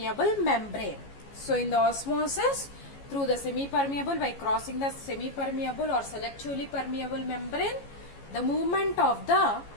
membrane. So in the osmosis, through the semi-permeable, by crossing the semi-permeable or selectively permeable membrane, the movement of the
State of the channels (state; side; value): late; right; 14 ms